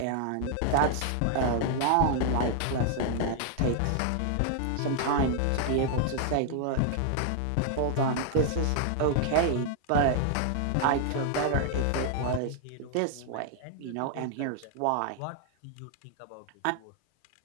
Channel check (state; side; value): different; both; correlation 0.00